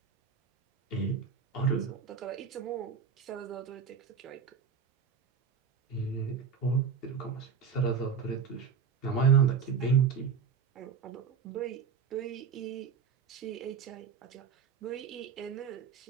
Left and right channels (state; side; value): quieter; left; 6.4 dB